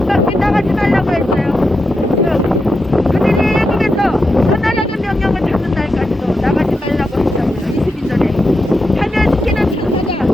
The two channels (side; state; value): both; normal; correlation 0.87